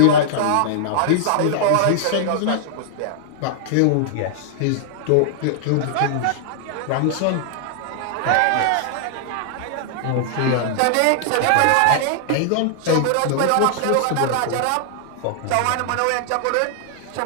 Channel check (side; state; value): both; different; correlation -0.01